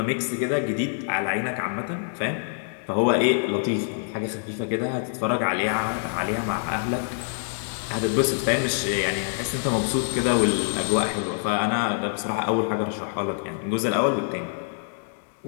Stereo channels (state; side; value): silent; right; digital silence